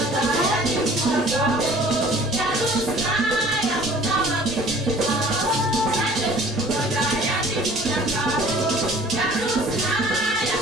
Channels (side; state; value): both; normal; correlation 0.50